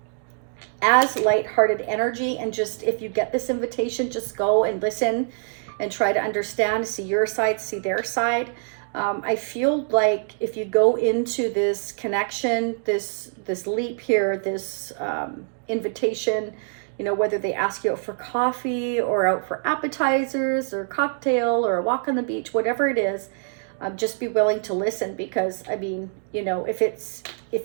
as lighthearted energy and just, if you get this invitation, just go and listen and try to understand, see your side, see their side. I feel like if you go into this connection, this leap here, this invitation, you know, whether they ask you out for coffee or out for appetizers or cocktail or a walk on the beach, whatever it is, just be willing to listen, because I mean, you know,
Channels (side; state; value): left; silent; digital silence